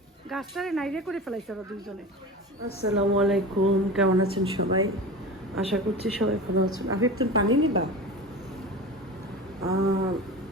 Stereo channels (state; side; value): normal; both; correlation 0.31